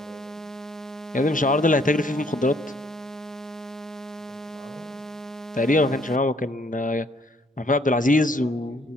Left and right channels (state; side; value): normal; both; correlation 0.66